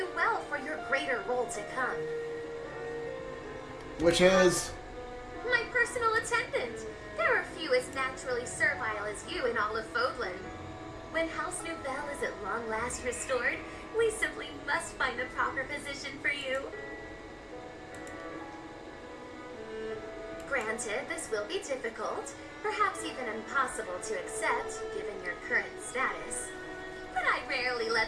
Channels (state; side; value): identical; both; correlation 1.00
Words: well for your greater role to come. Which is... My personal attendant. There are few as naturally servile as you in all of Fódlan. When House Nouvelle is at long last restored, we simply must find the proper position for you. Granted, this will be difficult, perhaps even impossible to accept, given your current status. But I rarely